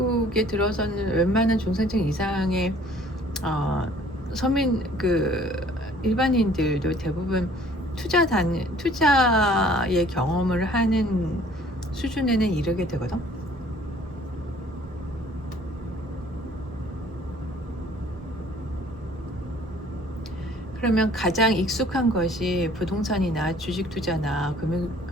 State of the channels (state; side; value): normal; both; correlation 0.55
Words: 들어서는 웬만한 중산층 이상의 어, 서민 일반인들도 대부분 투자의 경험을 하는 수준에는 이르게 되거든. 그러면 가장 익숙한 것이 부동산이나 주식 투자나